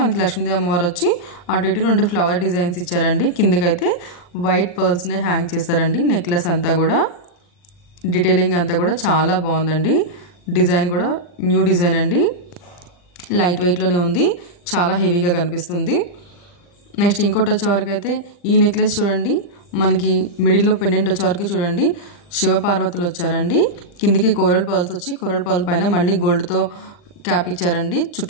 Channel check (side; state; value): right; late; 39 ms